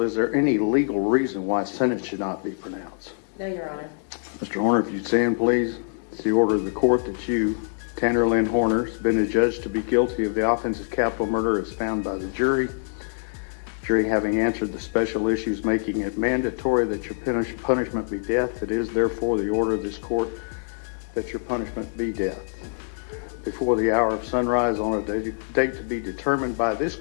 is there any legal reason why sentence should not be pronounced? No, Your Honor. Mr. Horner, if you'd stand, please. It's the order of the court that you, Tanner Lynn Horner, has been adjudged to be guilty of the offense of capital murder as found by the jury. Jury having answered the special issues, making it mandatory that your punishment be death, it is therefore the order of this court that your punishment be death. Before the hour of sunrise on a date to be determined by this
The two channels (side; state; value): right; silent; 62 dB below the other